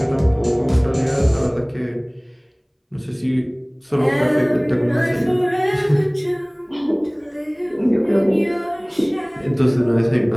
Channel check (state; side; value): identical; both; correlation 1.00